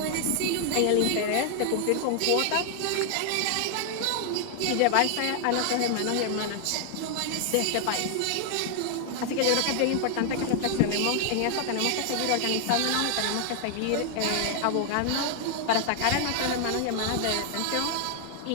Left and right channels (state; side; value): different; both; correlation 0.00